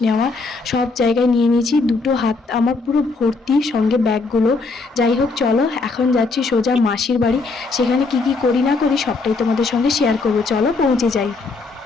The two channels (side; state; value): right; quieter; 3.9 dB